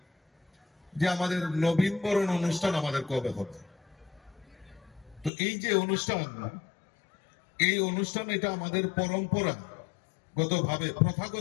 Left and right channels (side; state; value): right; drops out; at 5.3 s